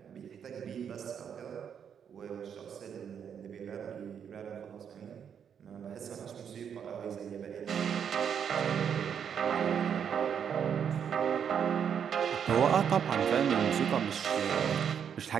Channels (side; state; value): left; quieter; 7.9 dB